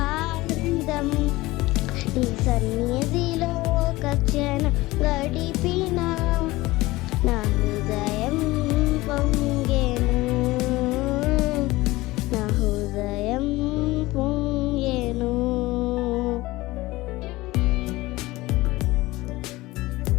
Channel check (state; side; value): quieter; right; 19.6 dB